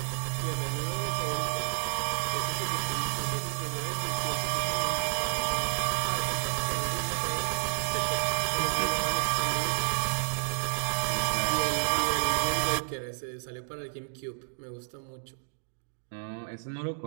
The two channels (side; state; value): left; silent; digital silence